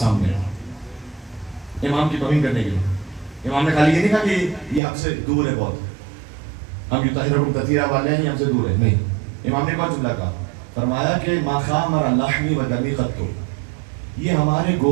سامنے امام کی توہین کرنے کے لیے۔ امام نے خالی یہ نہیں کہا کہ یہ ہم سے دور ہے بہت، ہم یطہرکم تطہیرا والے ہیں، یہ ہم سے دور ہے، نہیں۔ امام نے کون جملہ کہا؟ فرمایا کہ ما خامر لحمی و دمی قط، یہ ہمارے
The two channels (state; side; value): drops out; left; at 4.8 s